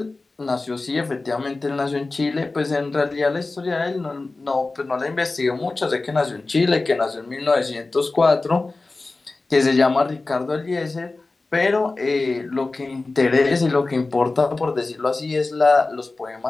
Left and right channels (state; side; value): quieter; right; 3.4 dB